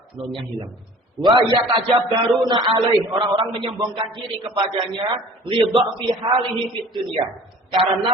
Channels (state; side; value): normal; both; correlation 0.47